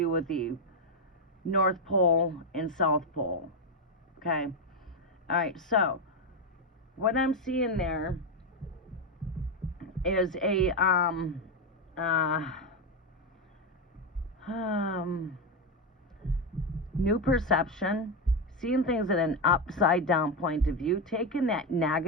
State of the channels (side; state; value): both; normal; correlation 0.08